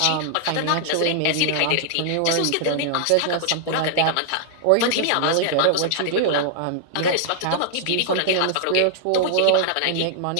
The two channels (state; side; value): different; both; correlation -0.01